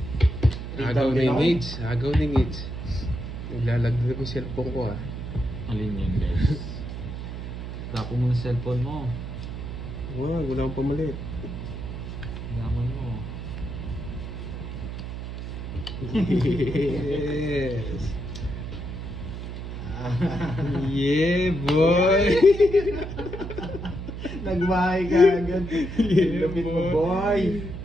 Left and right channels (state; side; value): noise; right; hum, 7 dB below the sound